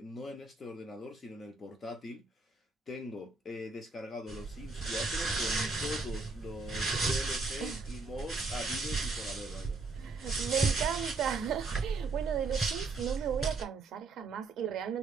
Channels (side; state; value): left; quieter; 3.9 dB